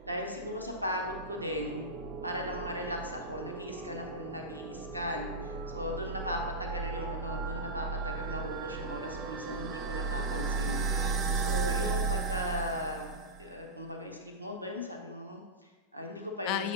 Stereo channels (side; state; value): both; normal; correlation -0.13